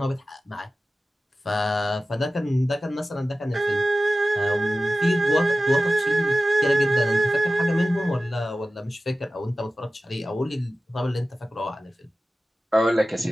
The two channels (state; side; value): normal; both; correlation 0.95